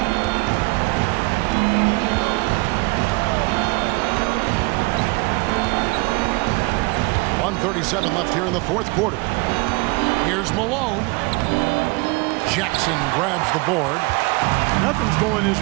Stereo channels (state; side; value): quieter; left; 26.0 dB